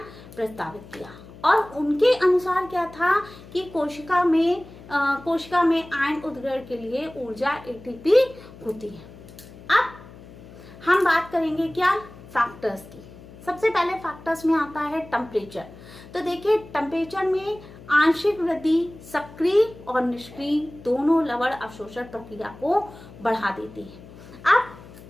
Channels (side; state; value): left; noise; hum, 19 dB below the sound